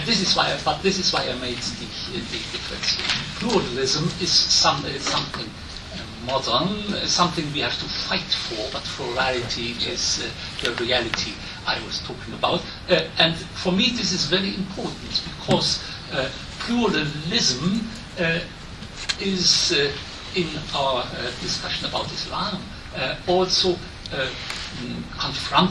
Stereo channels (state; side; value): identical; both; correlation 1.00